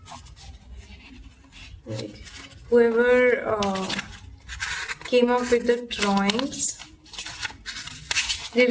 Like, whoever came up with the drawings did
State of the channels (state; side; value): identical; both; correlation 1.00